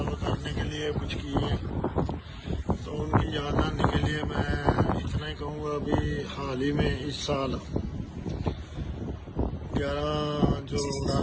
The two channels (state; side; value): identical; both; correlation 1.00